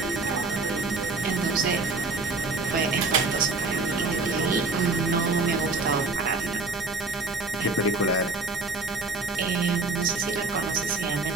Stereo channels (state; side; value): quieter; left; 3.6 dB